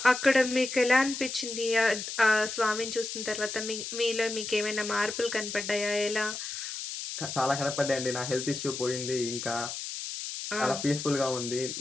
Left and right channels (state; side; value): noise; left; hiss, 6 dB below the sound